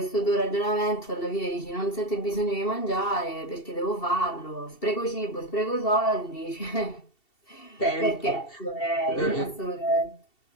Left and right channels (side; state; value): right; late; 2.7 ms